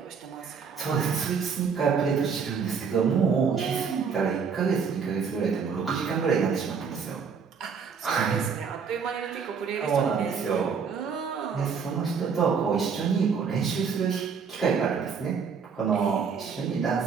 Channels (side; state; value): left; quieter; 6.1 dB